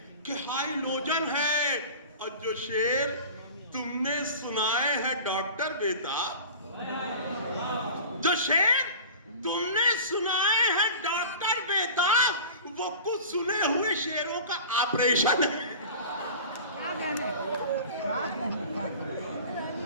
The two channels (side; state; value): both; inverted; correlation -0.37